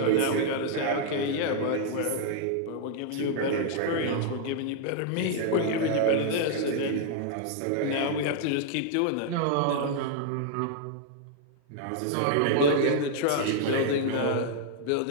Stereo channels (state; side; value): different; both; correlation -0.01